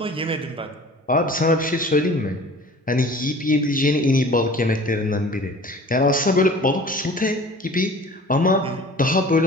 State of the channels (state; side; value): normal; both; correlation 0.44